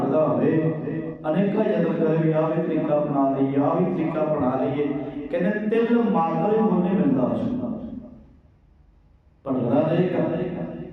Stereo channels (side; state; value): both; identical; correlation 1.00